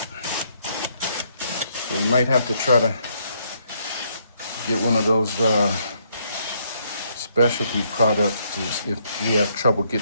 So we might have to try to get one of those specialty products if we have trouble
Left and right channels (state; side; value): inverted; both; correlation -0.71